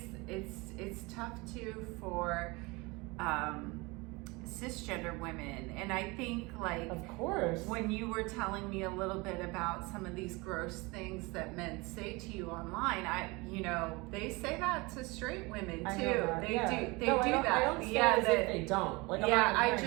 tough too for cisgender women, and I think, like, of course, when you were telling me a little bit about some of these gross things that men say to you online, they say that to straight women too. They do that. I don't say as if they don't. Like,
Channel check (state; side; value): quieter; left; 25.1 dB